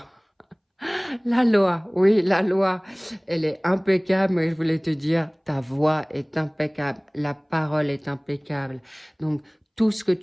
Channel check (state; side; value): identical; both; correlation 1.00